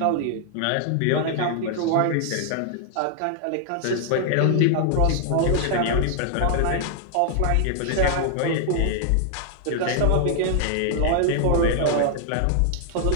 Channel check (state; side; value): different; both; correlation 0.00